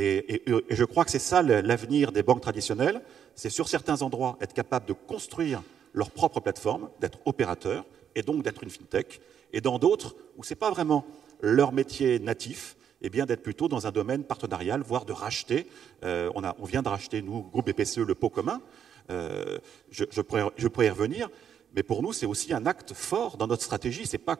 je crois que c'est ça l'avenir des banques traditionnelles. C'est sur certains endroits être capable de construire leur propre plateforme, d'être opérateur, et donc d'être une fintech. Et dans d'autres, où ce n'est pas vraiment leur métier natif, eh bien d'être plutôt dans un domaine partenarial, voire de racheter. On vient de racheter, nous, groupe BPCE, le pot commun. Je pourrais y revenir, mais pour nous, c'est aussi un acte fort dans notre stratégie. Ce n'est pas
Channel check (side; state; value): left; quieter; 8.6 dB